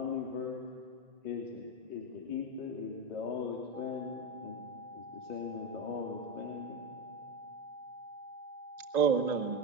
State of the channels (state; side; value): late; left; 1.9 ms